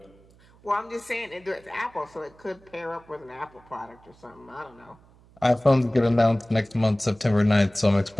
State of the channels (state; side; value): noise; right; hum, 28 dB below the sound